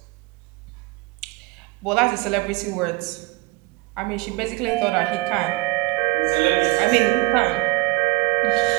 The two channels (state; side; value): quieter; left; 22.5 dB